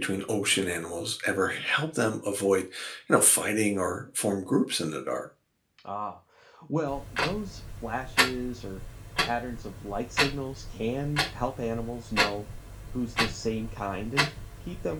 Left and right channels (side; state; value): both; identical; correlation 1.00